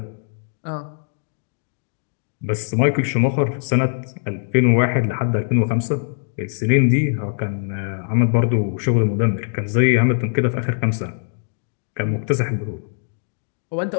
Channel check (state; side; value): silent; right; digital silence